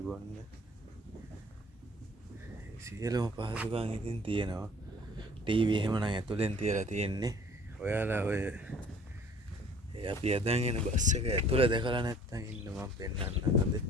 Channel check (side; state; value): both; normal; correlation 0.52